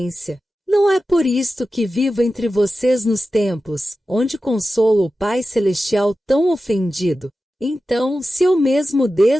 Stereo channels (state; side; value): normal; both; correlation 0.93